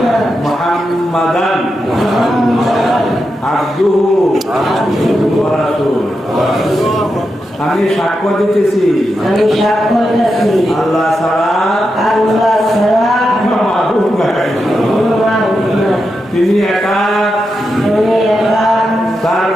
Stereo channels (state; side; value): normal; both; correlation 0.87